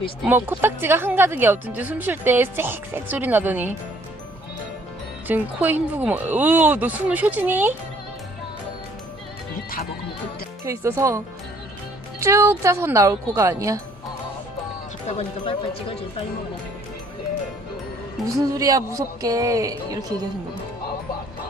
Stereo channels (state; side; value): normal; both; correlation 0.61